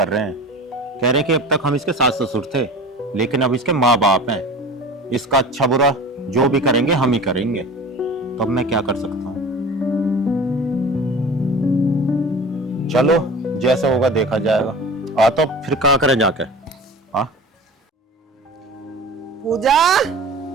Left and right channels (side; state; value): both; normal; correlation 0.37